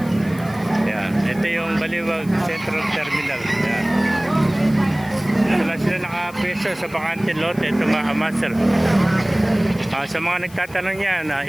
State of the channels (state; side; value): noise; left; hiss, 22 dB below the sound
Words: Yan. Ito yung Baliwag Central Terminal. Yan. Ito lang sila nakapeso sa bakante lote. Ito mga kamaster. Sa mga nagtatanong yan,